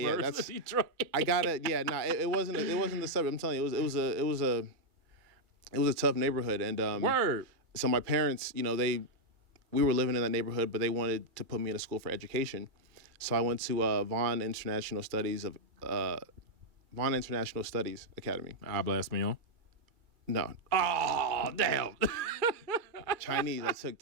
of Detroit. I got it. Yeah, it wasn't the suburb. I'm telling you, it was a tough neighborhood. And Word. So my parents, you know, we were living in that neighborhood, but they wanted to put me in a school for education. So I went to Vaughan International Studies Academy. Habla español? No. Oh, damn. Chinese. I took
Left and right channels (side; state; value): left; late; 2.3 ms